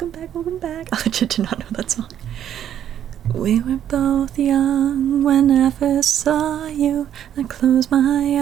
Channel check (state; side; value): quieter; left; 10.2 dB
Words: back. I legit did not know that song. We were both young when I first saw you. I close my